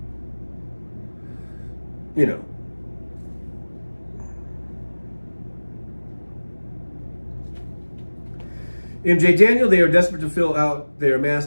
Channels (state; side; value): inverted; both; correlation -1.00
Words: You know. MJ Daniel, they are desperate to fill out their mass